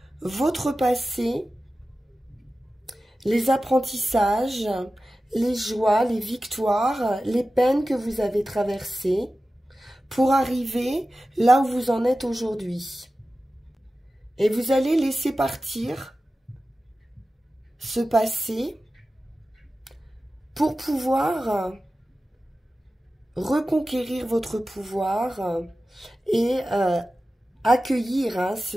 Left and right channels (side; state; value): both; normal; correlation 0.95